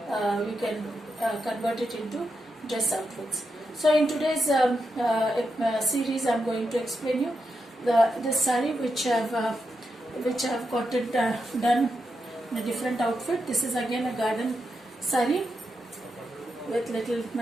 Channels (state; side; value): normal; both; correlation 0.86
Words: you can convert it into dress outfits. So in today's series, I'm going to explain you this sari which I've got it done in a different outfit. This is again a garden sari with little